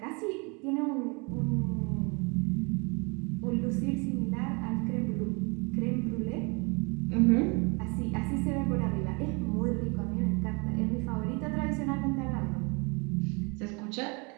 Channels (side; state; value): left; quieter; 30.6 dB